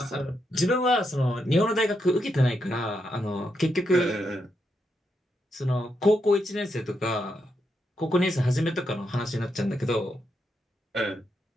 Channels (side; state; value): both; normal; correlation 0.82